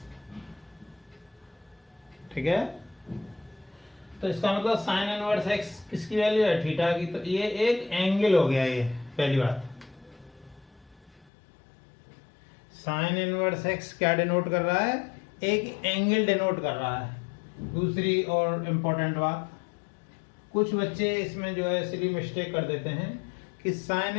ठीक है। तो इसका मतलब साइन इनवर्स x किसकी वैल्यू है? थीटा की। तो ये एक एंगल हो गया, ये पहली बात। साइन इनवर्स x क्या डिनोट कर रहा है? एक एंगल डिनोट कर रहा है। दूसरी और इम्पोर्टेंट बात, कुछ बच्चे इसमें जो है सिली मिस्टेक कर देते हैं कि साइन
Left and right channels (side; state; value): right; drops out; at 11.2 s